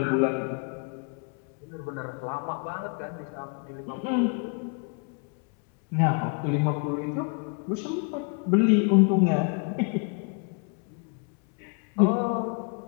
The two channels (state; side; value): quieter; right; 36.7 dB